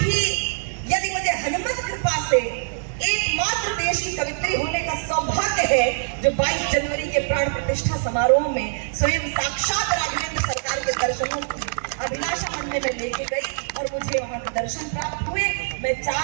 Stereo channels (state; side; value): silent; left; digital silence